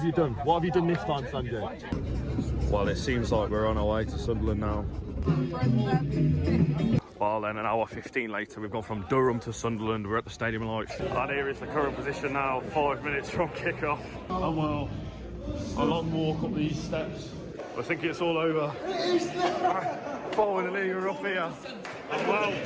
you done? What have you done this time, Sanjay? Well, it seems like we're on our way to Sunderland now. Well, then an hour 15 later, we've gone from Durham to Sunderland. We're at the Stadium of Light. And here is the current position now, 5 minutes from kick-off. And well, a long walk up these steps. I think it's all over. Finally, we're up here. And well,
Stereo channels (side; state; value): both; identical; correlation 1.00